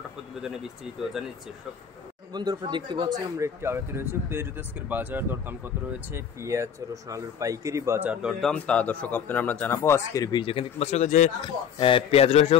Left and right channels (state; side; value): quieter; right; 7.9 dB